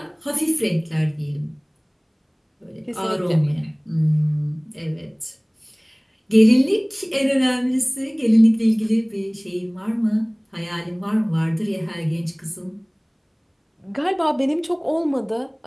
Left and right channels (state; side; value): identical; both; correlation 1.00